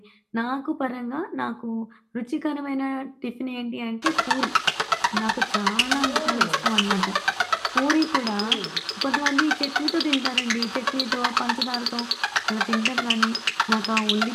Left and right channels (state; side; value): identical; both; correlation 1.00